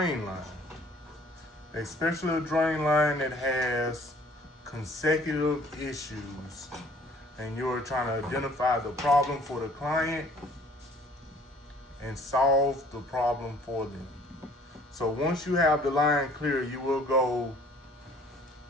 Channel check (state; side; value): normal; both; correlation 0.55